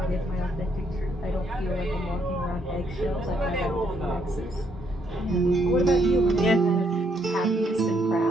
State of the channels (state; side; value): normal; both; correlation 0.73